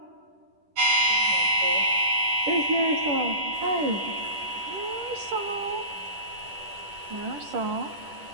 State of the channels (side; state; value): left; late; 10 ms